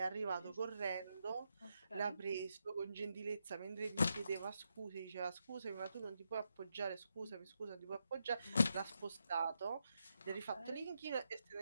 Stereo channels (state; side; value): inverted; both; correlation -0.83